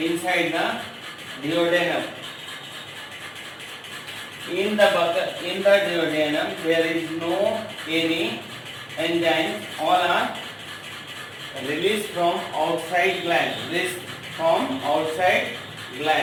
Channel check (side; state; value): both; identical; correlation 1.00